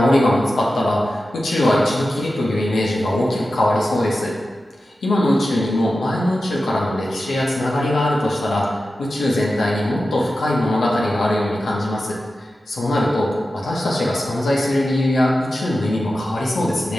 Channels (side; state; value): both; normal; correlation 0.93